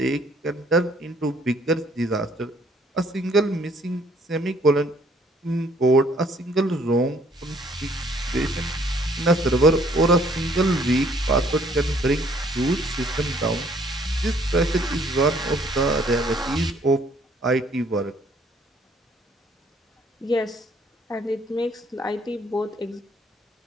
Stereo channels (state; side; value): normal; both; correlation 0.62